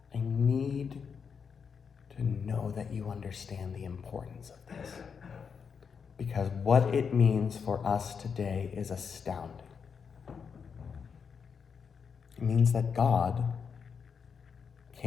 I need to know that you understand the importance of this, because what it means for us today is astounding. It means that God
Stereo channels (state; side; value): quieter; right; 6.3 dB